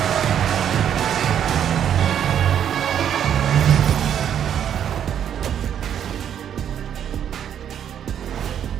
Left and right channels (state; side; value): quieter; left; 9.3 dB